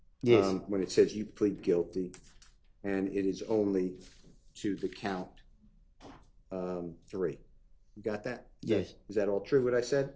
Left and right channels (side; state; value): both; identical; correlation 1.00